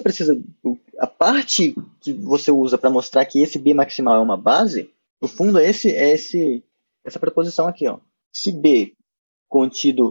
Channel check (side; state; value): both; inverted; correlation -1.00